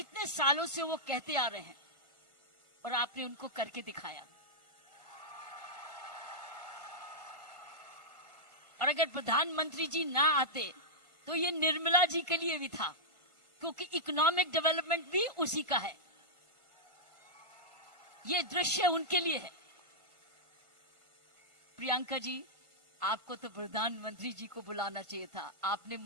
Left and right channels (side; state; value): left; late; 1.5 ms